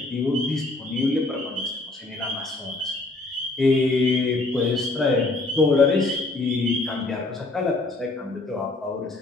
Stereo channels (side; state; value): right; quieter; 3.1 dB